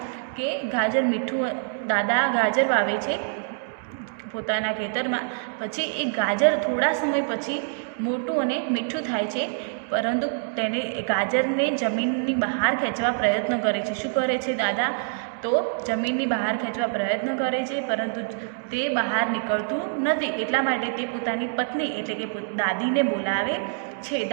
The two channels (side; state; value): left; silent; digital silence